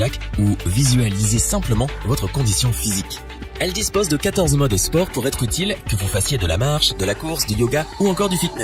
ou visualiser simplement votre condition physique. Elle dispose de 14 modes sport pour être utile, que vous fassiez de la marche, de la course, du yoga ou encore du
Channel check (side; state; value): both; identical; correlation 1.00